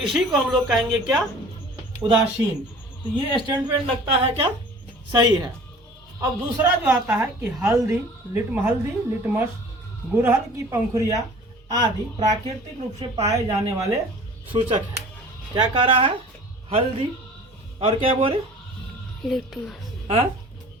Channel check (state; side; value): normal; both; correlation 0.46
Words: को हम लोग कहेंगे क्या, उदासीन। तो ये स्टेटमेंट लगता है क्या, सही है। अब दूसरा जो आता है कि हल्दी लिटमस गुड़हल की पंखुड़ियाँ आदि प्राकृतिक रूप से पाए जाने वाले सूचक है। क्या कह रहा है, हल्दी और क्या बोले, लिटमस। हाँ,